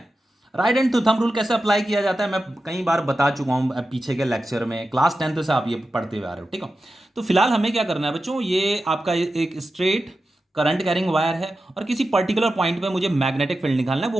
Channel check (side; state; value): both; normal; correlation 0.92